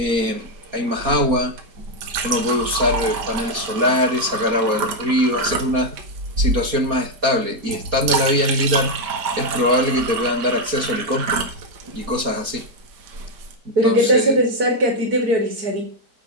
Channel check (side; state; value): left; late; 4.3 ms